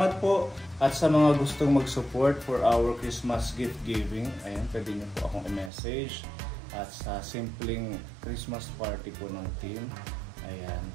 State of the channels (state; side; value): drops out; left; at 5.7 s